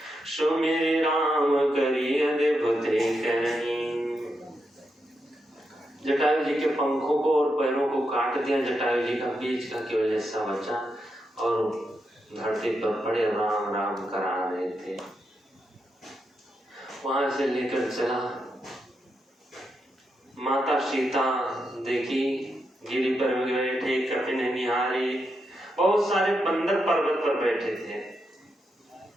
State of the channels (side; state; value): both; normal; correlation 0.84